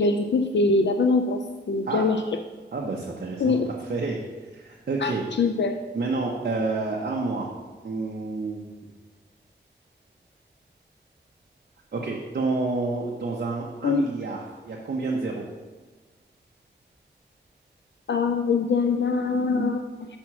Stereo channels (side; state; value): both; normal; correlation 0.43